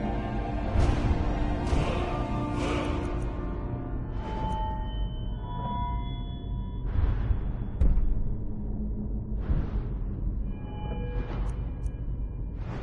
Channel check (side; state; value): both; identical; correlation 1.00